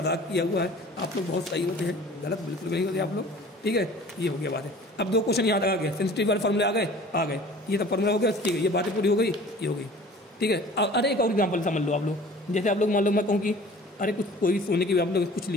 किया हुआ है। आप लोग बहुत सही होते हैं, गलत बिल्कुल नहीं होते आप लोग, ठीक है। ये हो गया बातें। अब दो क्वेश्चन यहाँ तक आ गए, सेंसिटिव वाले फार्मूले आ गए, ये सब फार्मूला हो गया, ठीक है। ये बातें पूरी हो गई, ये हो गई, ठीक है। अरे एक और एग्जाम्पल समझ लो आप लोग, जैसे आप लोग मान लो मैं कहूँ कि अरे कुछ कोई सोने की आप लोग कुछ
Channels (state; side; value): normal; both; correlation 0.46